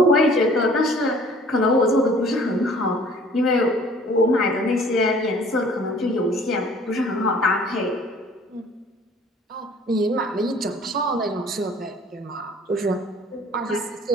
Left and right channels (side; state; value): both; normal; correlation 0.52